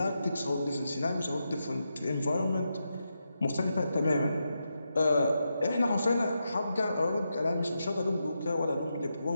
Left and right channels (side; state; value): both; inverted; correlation -0.86